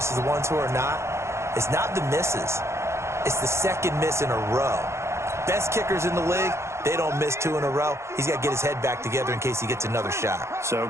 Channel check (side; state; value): left; late; 0.13 ms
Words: the ones who are not is not the misses. It's the second miss in a row. Best kickers in the league, they don't miss 2 in a row. He's got to get his head back together in case he gets another shot. So